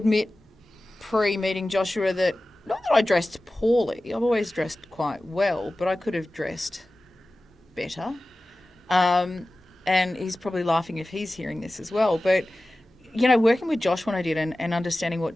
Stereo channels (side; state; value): both; normal; correlation 0.96